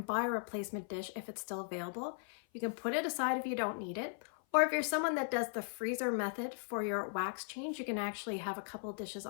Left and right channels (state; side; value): silent; right; 53 dB below the other